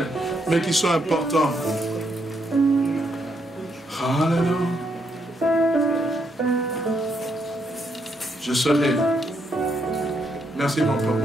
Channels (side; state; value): both; normal; correlation 0.77